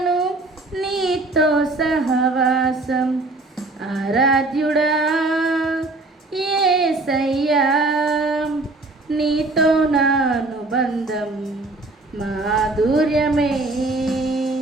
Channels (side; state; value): left; quieter; 3.1 dB